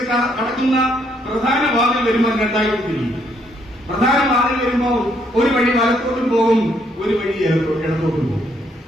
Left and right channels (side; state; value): both; normal; correlation 0.71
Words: കടക്കുന്ന പ്രധാന വാതിൽ വരുമ്പോൾ 2 തിരിയും. പ്രധാന വാതിൽ വരുമ്പോൾ ഒരു വഴി വലത്തോട്ടും പോകും, ഒരു വഴി ഇടത്തോട്ടും പോകും.